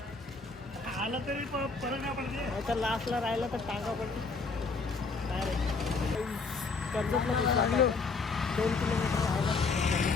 आलं तरी परत नाही पडते. तर लास्टला राहिलं तर टांगा पडली. काय रे कर्जतला दिसला 2 किलोमीटर राहिला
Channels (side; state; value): right; quieter; 4.2 dB